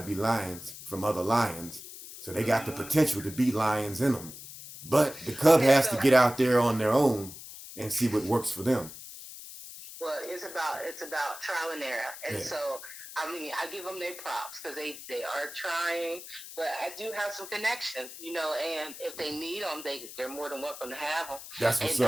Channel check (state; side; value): noise; left; hiss, 13 dB below the sound